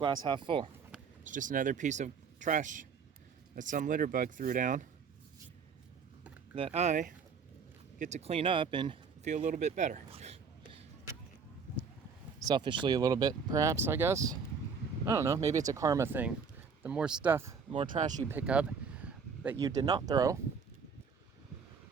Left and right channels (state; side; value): quieter; left; 5.8 dB